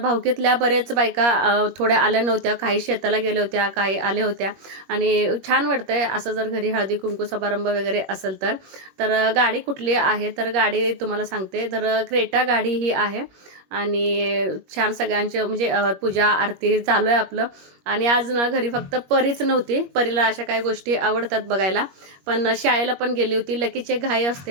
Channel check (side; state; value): left; late; 21 ms